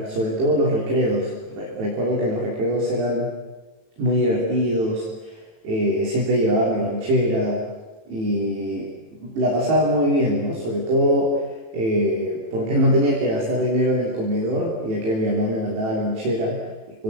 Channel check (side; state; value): left; late; 18 ms